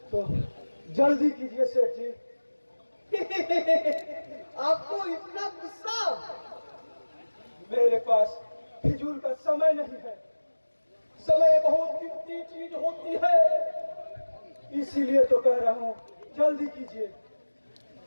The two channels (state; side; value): inverted; both; correlation -1.00